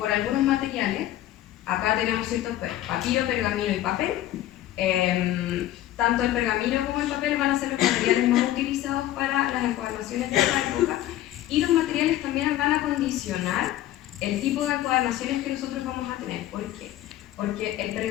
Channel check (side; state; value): right; quieter; 13.7 dB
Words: algunos materiales. Acá tenemos ciertos papiro, pergamino y papel. Tanto el pergamino como el papel van a ser los materiales más utilizados para las encuadernaciones de esta época, y los materiales también van a condicionar el tipo de encuadernaciones que nosotros vamos a tener. ¿Por qué? Porque el